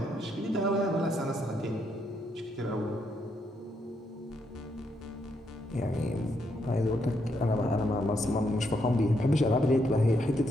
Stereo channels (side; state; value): both; normal; correlation 0.77